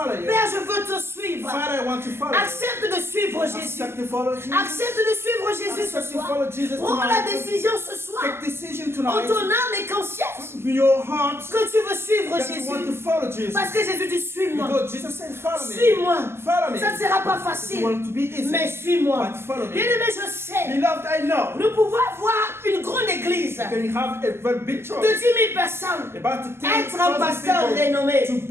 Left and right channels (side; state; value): left; late; 0.12 ms